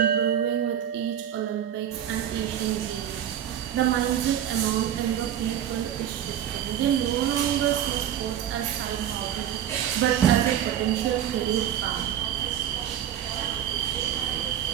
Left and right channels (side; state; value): left; quieter; 10.3 dB